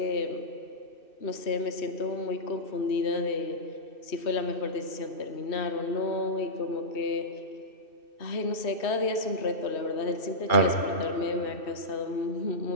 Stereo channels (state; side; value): late; right; 2.6 ms